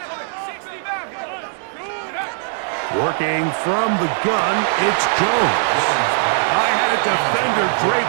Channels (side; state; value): left; silent; digital silence